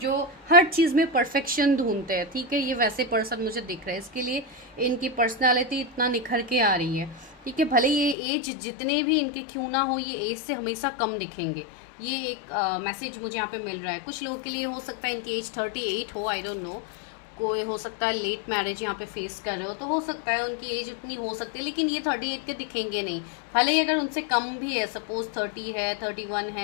हर चीज़ में परफेक्शन ढूंढते हैं, ठीक है। ये वैसे पर्सन मुझे दिख रहा है, इसके लिए इनकी पर्सनालिटी इतना निखर के आ रही है, ठीक है। भले ये एज जितने भी इनके क्यों ना हो, ये एज से हमेशा कम दिखेंगे। ये एक मैसेज मुझे यहाँ पे मिल रहा है। कुछ लोगों के लिए हो सकता है इनकी एज 38 हो, आई डोंट नो। कोई हो सकता है लेट मैरिज यहाँ पे फेस कर रहे हो, तो हो सकता है उनकी एज इतनी हो सकती है, लेकिन ये 38 के दिखेंगे नहीं। भले ही अगर उनसे कम भी है, सपोज 30 है, 31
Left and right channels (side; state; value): right; drops out; at 8.2 s